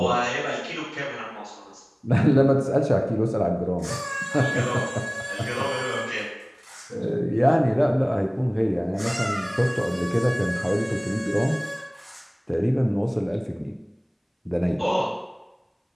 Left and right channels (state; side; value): identical; both; correlation 1.00